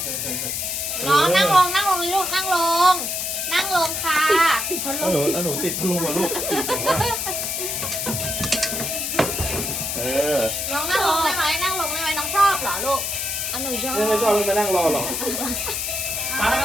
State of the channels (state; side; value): noise; left; hiss, 2 dB below the sound